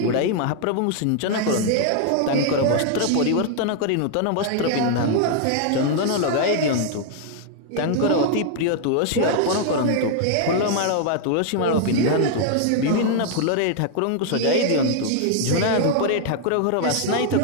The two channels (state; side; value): different; both; correlation 0.00